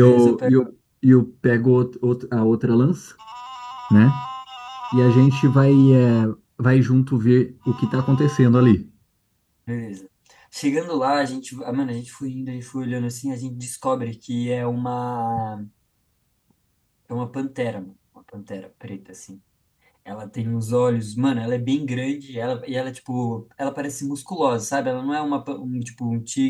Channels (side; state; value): both; identical; correlation 1.00